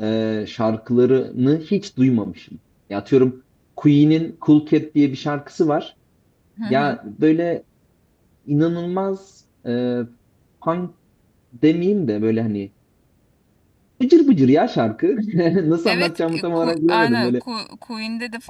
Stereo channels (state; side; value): identical; both; correlation 1.00